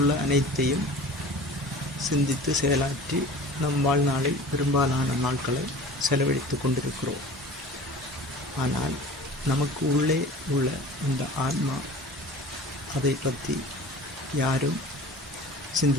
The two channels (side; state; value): both; normal; correlation 0.41